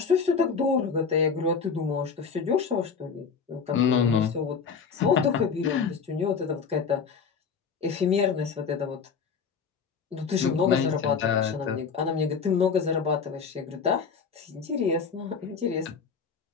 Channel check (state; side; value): quieter; right; 5.9 dB